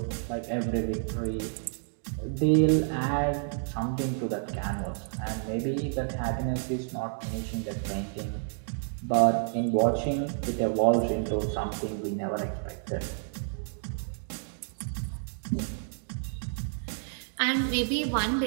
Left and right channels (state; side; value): silent; left; digital silence